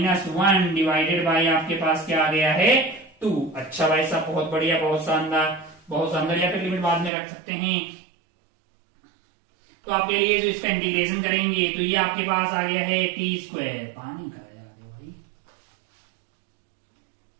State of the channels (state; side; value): drops out; left; at 7.1 s